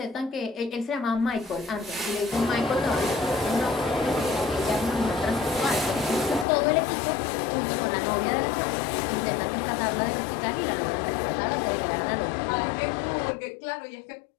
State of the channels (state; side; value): drops out; right; at 6.5 s